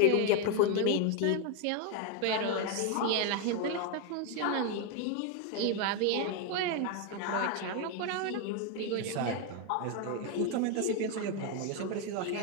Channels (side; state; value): both; different; correlation 0.01